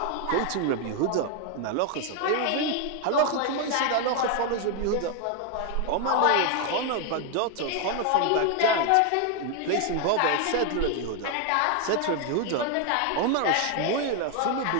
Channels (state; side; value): different; both; correlation 0.01